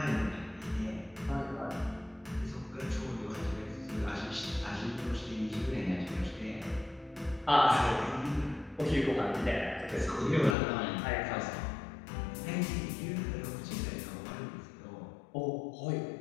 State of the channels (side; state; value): right; drops out; at 10.6 s